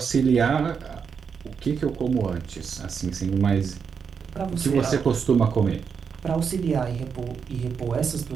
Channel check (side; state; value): left; quieter; 6.3 dB